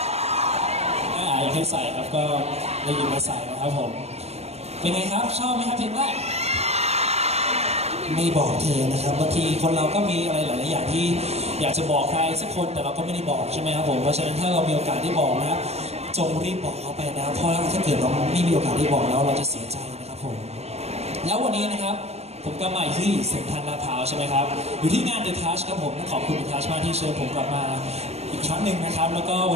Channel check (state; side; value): late; left; 0.31 ms